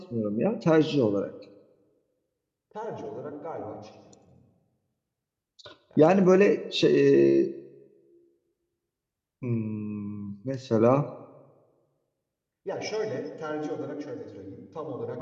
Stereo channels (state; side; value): identical; both; correlation 1.00